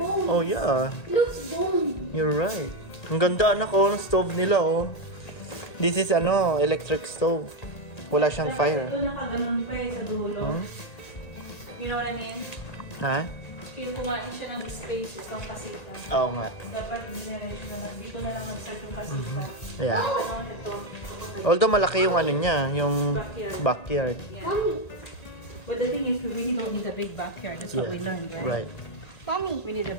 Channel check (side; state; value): right; late; 1.9 ms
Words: Oh, yeah. It looks bone. You're right. Ang ganda, anak, oh, ng stove nila, oh. This is, electric stove. Wala siyang fire. Ito nakaganon pa eh sa dulo. You know what I mean? Ha? Kaya kumain siya ng space, itong kasita. Oo nga. Dapat generation na lang. Dito na lang mag-start yung kasita. Yeah. Ano ito? Although malaki yung ano niya, yung backyard. Yeah. Mommy, But the thing is, we really don't need a big backyard. That's what we learned, right? Right. Mommy. We need a